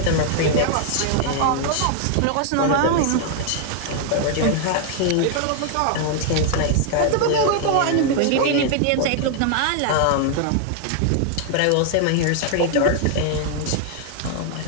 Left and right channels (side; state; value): both; different; correlation 0.00